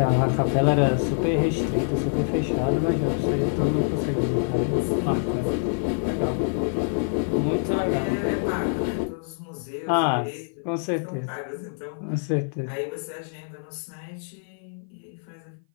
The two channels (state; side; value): silent; right; 57 dB below the other